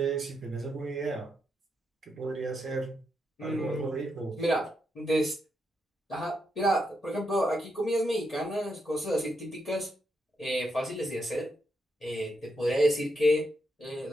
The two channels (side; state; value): both; normal; correlation 0.82